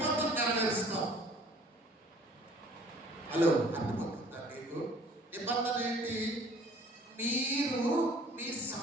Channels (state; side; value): normal; both; correlation 0.53